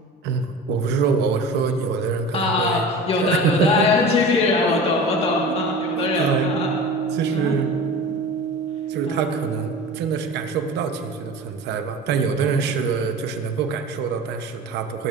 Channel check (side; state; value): both; normal; correlation 0.35